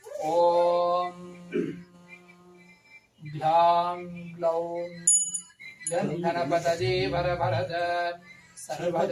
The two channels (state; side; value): identical; both; correlation 1.00